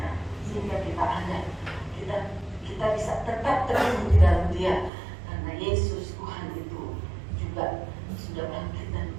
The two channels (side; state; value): left; drops out; at 4.9 s